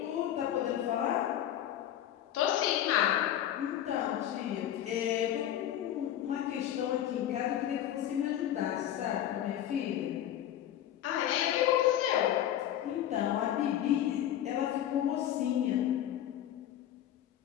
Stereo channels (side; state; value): right; quieter; 11.4 dB